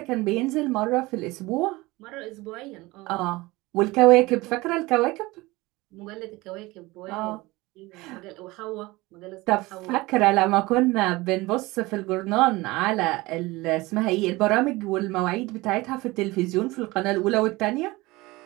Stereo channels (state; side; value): quieter; left; 21.2 dB